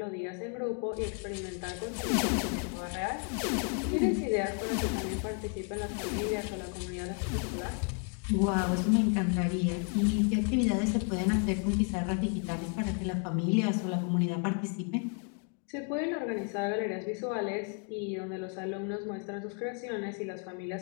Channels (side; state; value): right; quieter; 39.3 dB